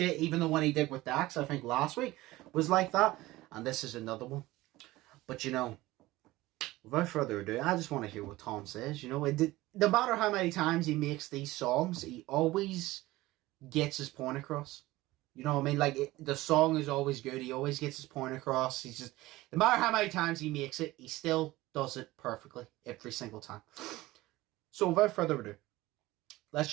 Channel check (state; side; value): quieter; left; 18.4 dB